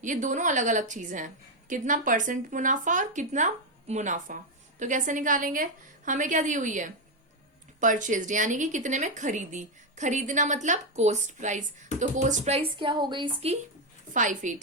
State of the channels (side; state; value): both; normal; correlation 0.05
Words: ये दोनों अलग अलग चीजें हैं, कितना परसेंट मुनाफा और कितना मुनाफा। तो कैसे निकालेंगे? हमें क्या दी हुई है? परचेज्ड, यानी कि कितने में खरीदी। खरीदना मतलब कॉस्ट प्राइस, तो कॉस्ट प्राइस क्या हो गई इसकी?